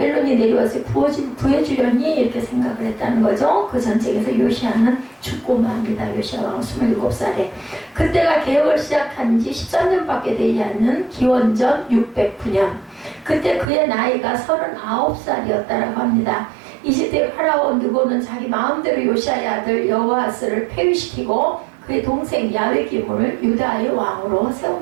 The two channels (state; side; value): drops out; left; at 13.7 s